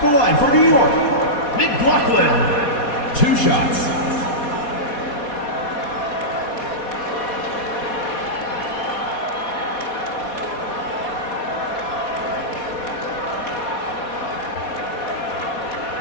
the line for New York, McLaughlin. 2 shots.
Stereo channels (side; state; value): right; late; 4.2 ms